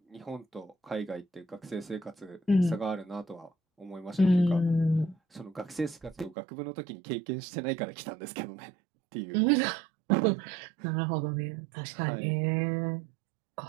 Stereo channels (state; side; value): drops out; left; at 6.4 s